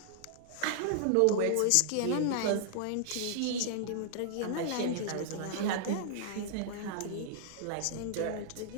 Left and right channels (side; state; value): both; different; correlation -0.01